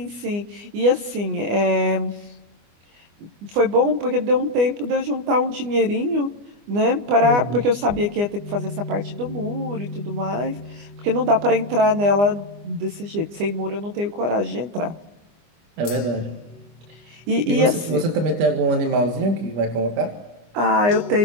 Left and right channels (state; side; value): late; left; 25 ms